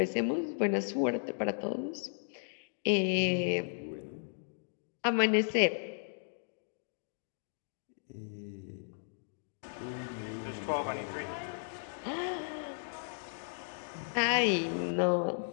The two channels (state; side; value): silent; right; digital silence